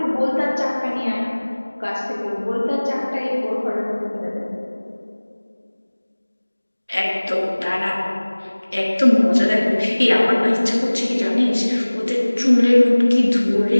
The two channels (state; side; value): inverted; both; correlation -1.00